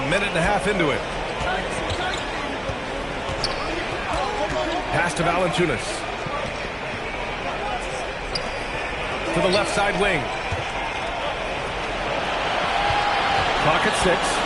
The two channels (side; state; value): both; identical; correlation 1.00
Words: minute and a half into it. Pass to Valanciunas. To the left side wing. Clock at 6.